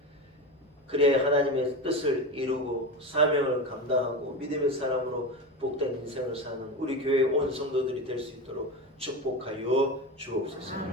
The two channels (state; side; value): normal; both; correlation 0.22